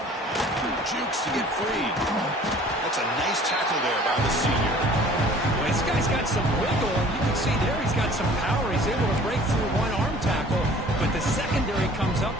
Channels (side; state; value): both; normal; correlation 0.50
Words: Jukes to get free. That's a nice tackle there by the senior. Well, this guy's got some wiggle, and you can see there he's got some power. He's able to break through one arm tackle, but the secondary comes up